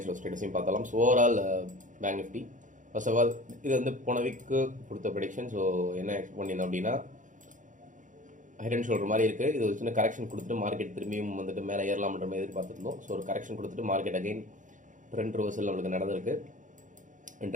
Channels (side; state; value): left; late; 0.37 ms